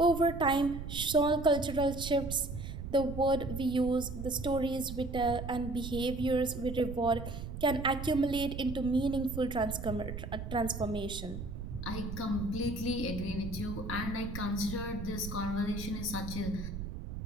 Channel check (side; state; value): right; noise; rumble, 7 dB below the sound